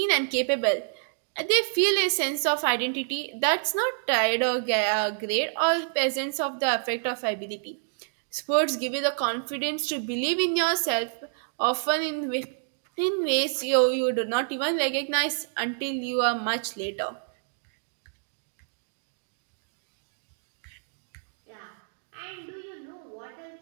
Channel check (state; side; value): silent; left; digital silence